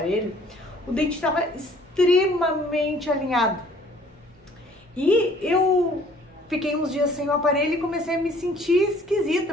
o dente estava extremamente alinhado. E eu fiquei uns dias sem o aparelho e comecei a me sentir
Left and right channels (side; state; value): both; normal; correlation 0.56